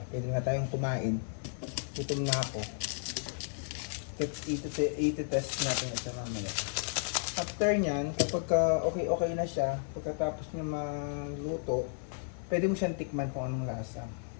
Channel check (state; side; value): silent; right; 56 dB below the other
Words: Pwede na tayong kumain. Gutom na ako. Iti-test natin ito mamaya. After niyan, kapag okay na siya, pagkatapos niya maluto, pwede mo siyang tikman kung anong lasa.